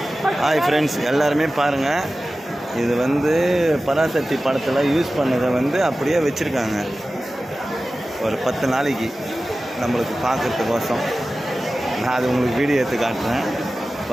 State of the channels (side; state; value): both; normal; correlation 0.95